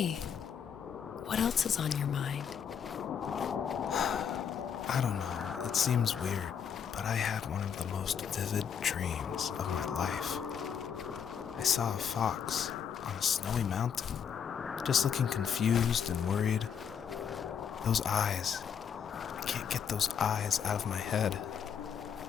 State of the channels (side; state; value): right; quieter; 7.6 dB